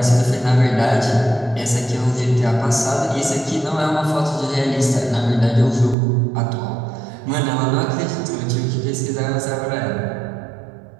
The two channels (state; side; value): drops out; left; at 6.0 s